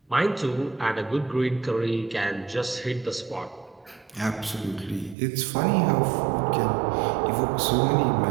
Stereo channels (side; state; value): left; drops out; at 5.2 s